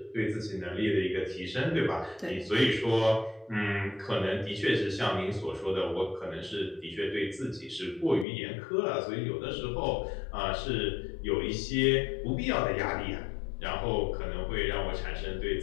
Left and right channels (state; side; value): drops out; right; at 8.2 s